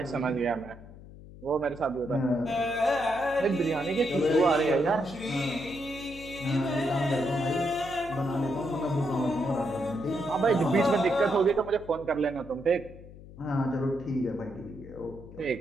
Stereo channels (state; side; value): noise; left; hum, 17 dB below the sound